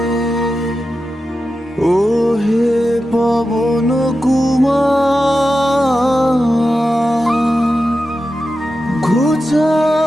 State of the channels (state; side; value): normal; both; correlation 0.91